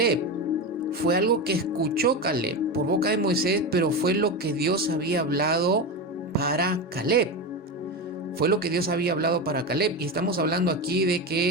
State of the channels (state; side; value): normal; both; correlation 0.19